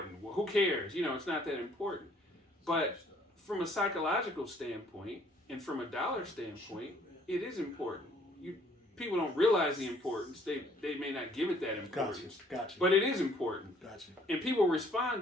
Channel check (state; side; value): normal; both; correlation 0.61